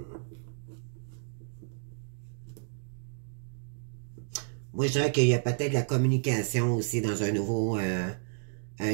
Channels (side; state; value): left; silent; digital silence